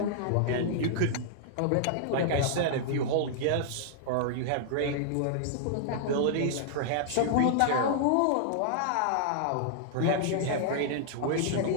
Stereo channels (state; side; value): different; both; correlation -0.01